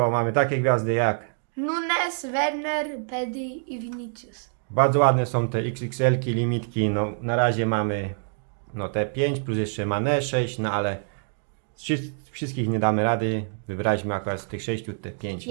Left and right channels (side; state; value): left; silent; digital silence